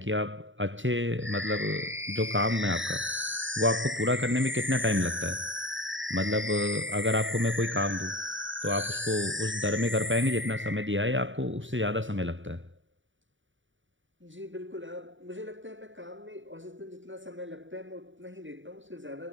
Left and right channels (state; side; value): late; left; 0.56 ms